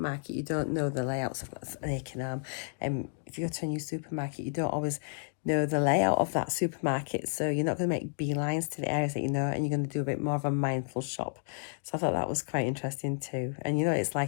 you don't know the layouts. I've got an aching arm. If you go to a new supermarket, you don't always know the layout of that supermarket, so you're not going to make beelines to the areas that you know, and you're going to do a bit more of a mindful shop. So I thought that was quite interesting too. And you know, it's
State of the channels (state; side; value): silent; right; digital silence